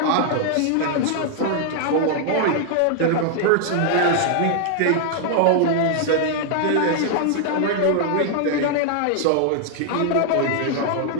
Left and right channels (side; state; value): both; different; correlation 0.00